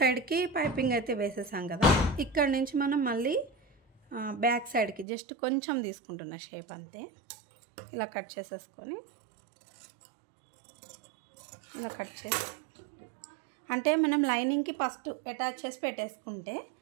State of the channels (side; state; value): left; drops out; at 5.1 s